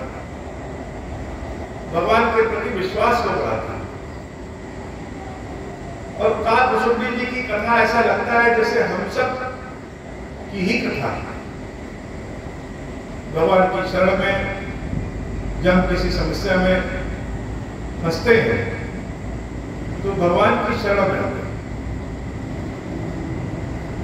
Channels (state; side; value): identical; both; correlation 1.00